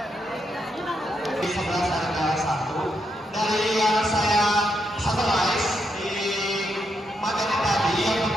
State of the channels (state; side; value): normal; both; correlation 0.80